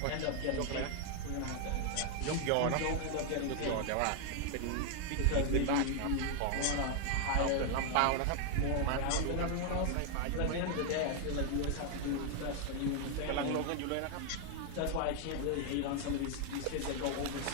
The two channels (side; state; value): both; different; correlation 0.00